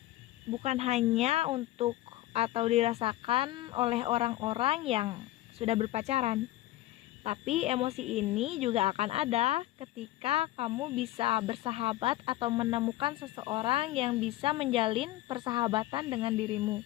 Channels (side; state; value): right; quieter; 16.0 dB